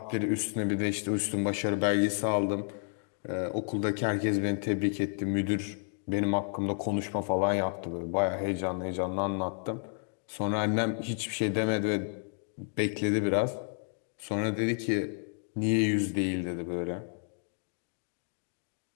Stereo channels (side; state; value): right; silent; 57 dB below the other